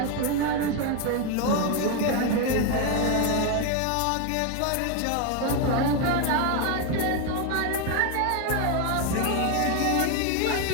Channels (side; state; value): both; different; correlation 0.01